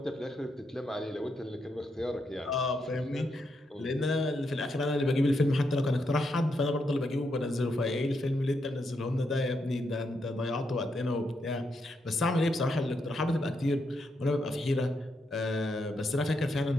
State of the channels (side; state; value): both; normal; correlation 0.81